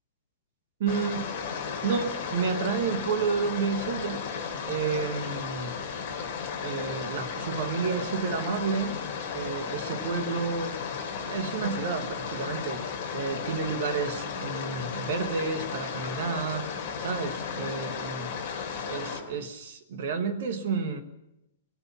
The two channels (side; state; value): both; inverted; correlation -0.32